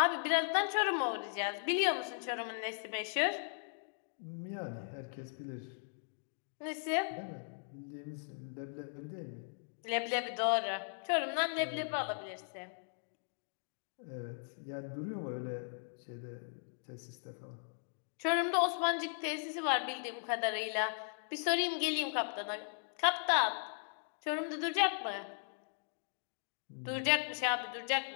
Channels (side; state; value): right; silent; digital silence